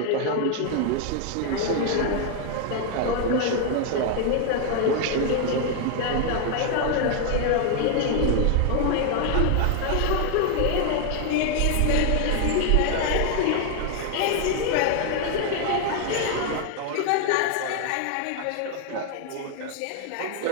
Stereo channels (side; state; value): both; different; correlation 0.00